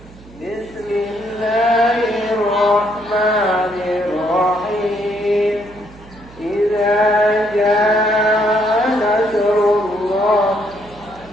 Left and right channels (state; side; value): noise; right; hum, 22 dB below the sound